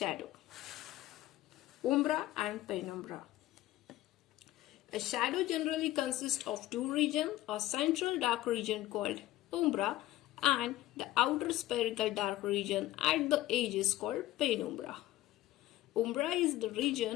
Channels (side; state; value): right; quieter; 15.7 dB